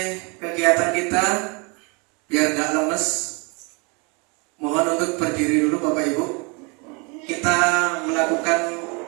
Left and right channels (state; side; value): quieter; left; 31.4 dB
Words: kegiatan kita biar gak lemes, mohon untuk berdiri dulu Bapak Ibu. Kita melakukan